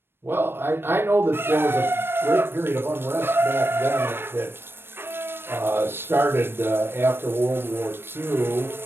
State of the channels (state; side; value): late; left; 0.11 ms